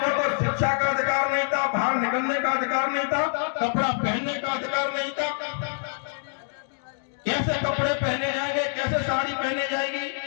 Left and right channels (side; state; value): right; silent; digital silence